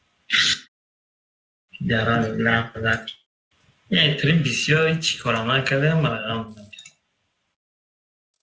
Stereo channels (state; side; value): identical; both; correlation 1.00